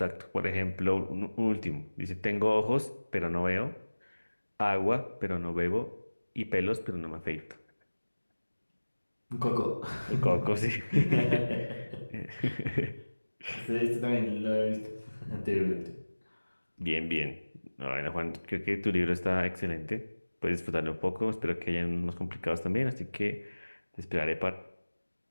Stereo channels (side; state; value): both; inverted; correlation -1.00